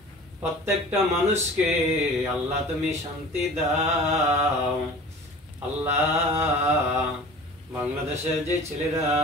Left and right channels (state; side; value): normal; both; correlation 0.41